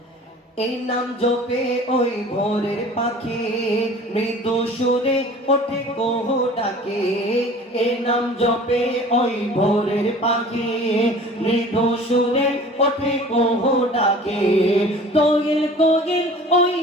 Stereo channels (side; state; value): both; normal; correlation 0.45